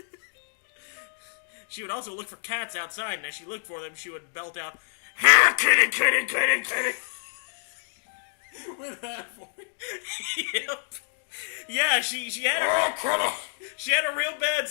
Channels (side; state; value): right; silent; digital silence